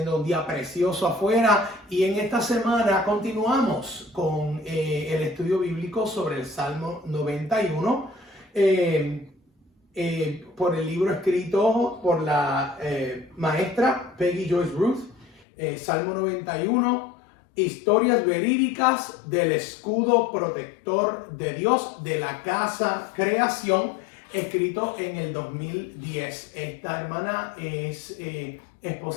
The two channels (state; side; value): drops out; right; at 15.4 s